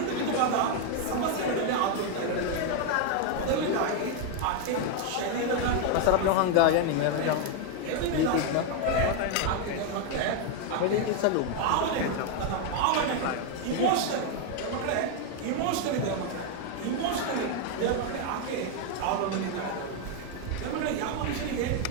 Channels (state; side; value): different; both; correlation 0.01